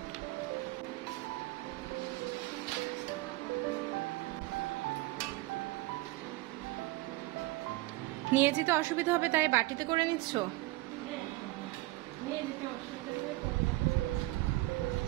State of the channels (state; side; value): quieter; left; 20.0 dB